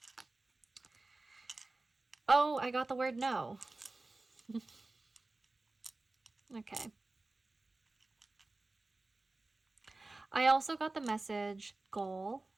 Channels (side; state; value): left; quieter; 3.2 dB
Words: Oh, I got the word no. Okay. I also got the message goal.